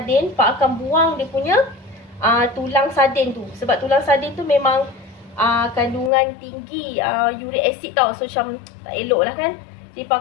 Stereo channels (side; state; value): right; drops out; at 6.1 s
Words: Pak akan buang dia punya tulang sardin tu. Sebab tulang sardin tu memang kandungan tinggi uric acid tau. So macam tak elok lah kan. Jadi Pak